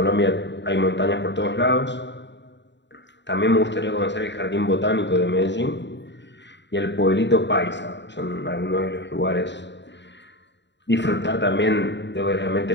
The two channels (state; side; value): late; right; 0.52 ms